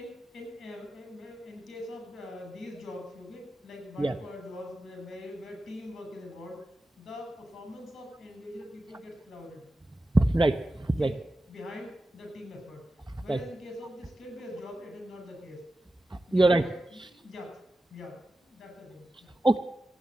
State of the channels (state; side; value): normal; both; correlation 0.92